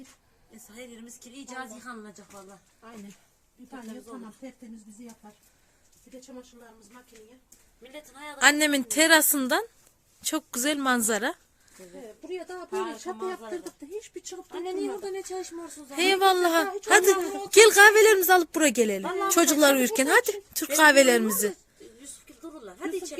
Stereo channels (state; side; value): identical; both; correlation 1.00